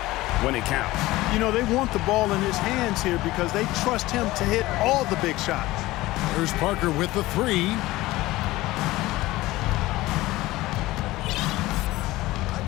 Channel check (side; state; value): right; quieter; 18.3 dB